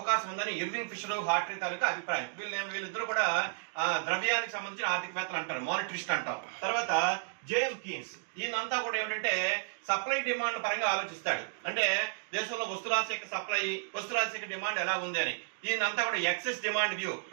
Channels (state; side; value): silent; left; digital silence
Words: ఉందని ఇర్వింగ్ ఫిషర్, హార్ట్రీ తాలూకా అభిప్రాయం. వీళ్ళిద్దరూ కూడా ద్రవ్యానికి సంబంధించిన ఆర్థికవేత్తలు అంటారు, మానిటరిస్ట్ అంటాం. తర్వాత జేఎం కీన్స్, ఈయనంతా కూడా ఏమిటంటే సప్లై డిమాండ్ పరంగా ఆలోచిస్తాడు. అంటే దేశంలో వస్తురాశి యొక్క సప్లై, వస్తురాశి యొక్క డిమాండ్ ఎలా ఉంది అని. ఈయనంతా కూడా ఎక్సెస్ డిమాండ్ వ్యూ,